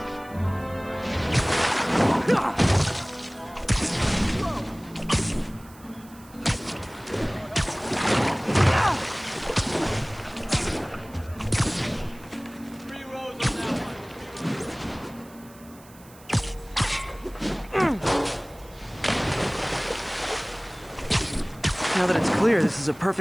Now that it's clear, this is a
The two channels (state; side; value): noise; right; hiss, 24 dB below the sound